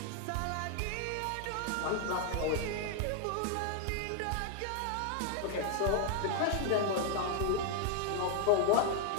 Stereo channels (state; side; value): different; both; correlation 0.00